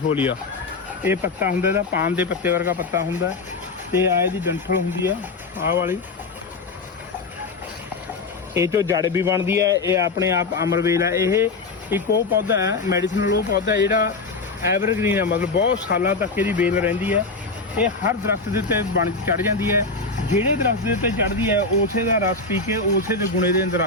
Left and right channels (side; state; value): right; quieter; 3.8 dB